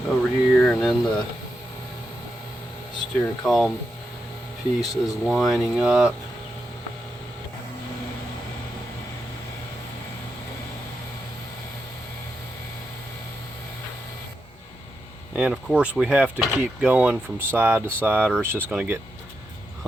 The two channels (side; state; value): both; normal; correlation 0.85